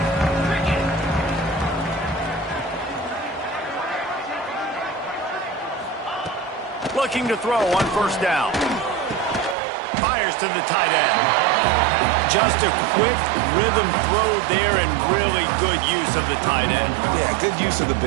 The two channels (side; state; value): left; drops out; at 9.6 s